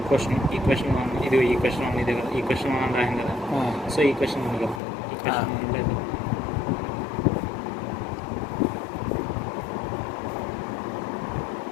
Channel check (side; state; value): right; drops out; at 4.8 s